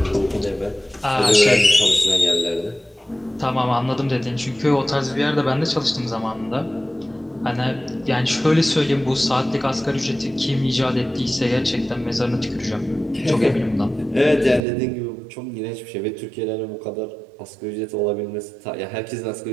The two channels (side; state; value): left; drops out; at 14.6 s